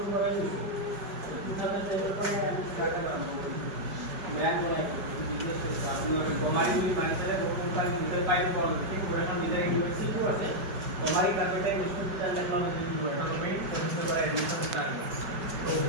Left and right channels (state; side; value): late; left; 5.0 ms